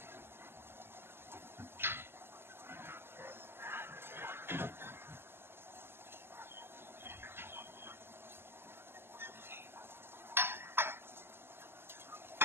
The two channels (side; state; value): left; late; 0.11 ms